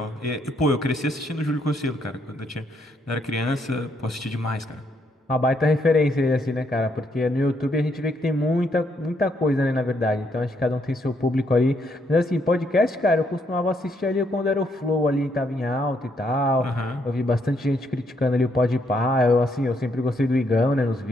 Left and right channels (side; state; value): both; normal; correlation 0.74